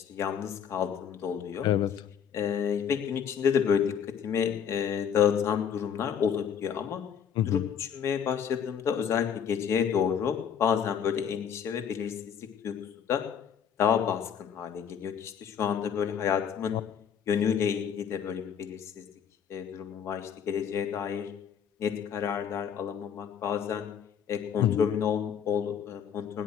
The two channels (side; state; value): right; quieter; 8.0 dB